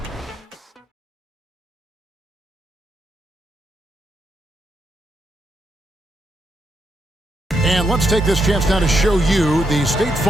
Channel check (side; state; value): both; normal; correlation 0.80